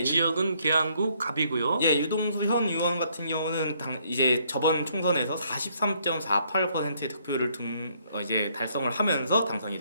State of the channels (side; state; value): both; inverted; correlation -0.68